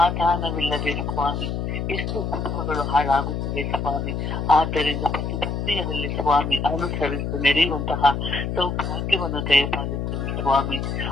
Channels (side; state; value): left; noise; hum, 2 dB below the sound